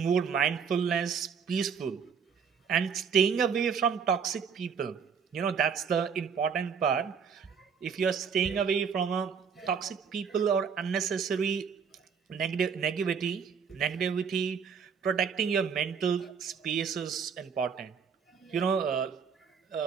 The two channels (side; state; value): left; quieter; 6.6 dB